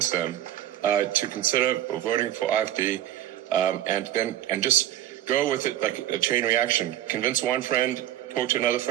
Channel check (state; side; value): quieter; left; 12.6 dB